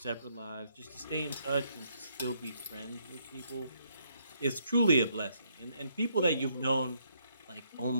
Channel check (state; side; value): inverted; both; correlation -0.72